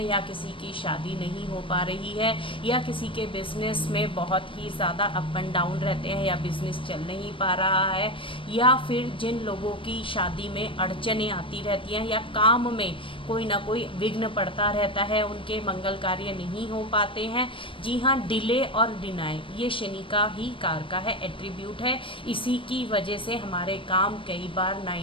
या किसी की शादी नहीं हो पा रही है, या किसी के बिज़नेस में बहुत ही ज़्यादा अप एंड डाउन रहते हैं, या बिज़नेस चल नहीं पा रहा है, या फिर जिन लोगों की शादी में अड़चनें आती रहती हैं, या काम में कोई ना कोई विघ्न पड़ता रहता है, उनके मंगल कार्य नहीं हो पाते हैं। जी हाँ, डिले और डिनाई ये शनि का ही कार का है, एट्रीब्यूट है। इसी की वजह से हमारे काम कई बार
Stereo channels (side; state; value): right; late; 0.25 ms